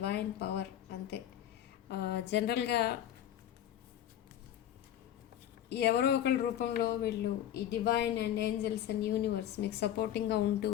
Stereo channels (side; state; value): right; quieter; 11.3 dB